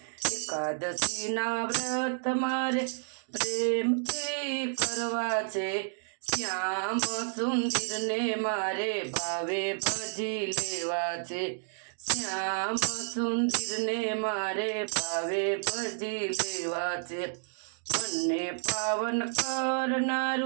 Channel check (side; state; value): left; silent; digital silence